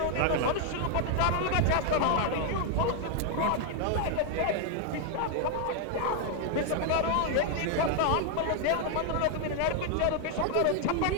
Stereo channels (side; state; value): both; different; correlation 0.00